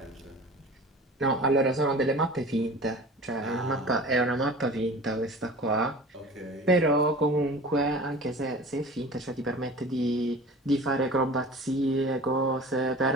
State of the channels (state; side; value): normal; both; correlation 0.39